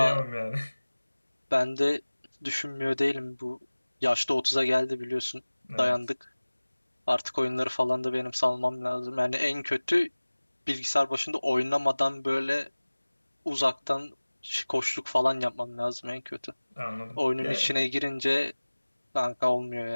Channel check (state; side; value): inverted; both; correlation -1.00